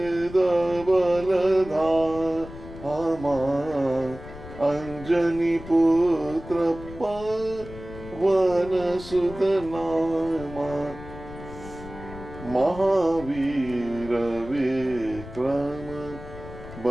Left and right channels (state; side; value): noise; left; rumble, 14 dB below the sound